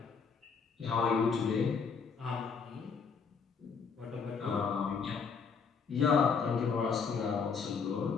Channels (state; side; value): quieter; right; 5.7 dB